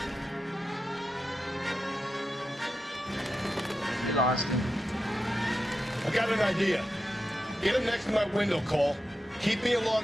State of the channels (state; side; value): normal; both; correlation 0.89